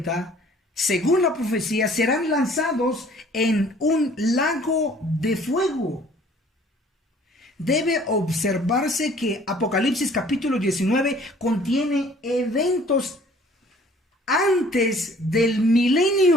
según la profecía, serán lanzados en un lago de fuego. Debe observarse que Apocalipsis capítulo 19 contiene eventos antes del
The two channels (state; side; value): normal; both; correlation 0.54